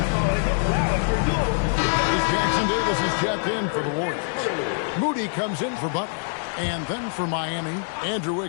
Jackson Davis is checked in for the Warriors. Moody comes in for Butler. And then for Miami, Andrew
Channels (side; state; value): right; silent; digital silence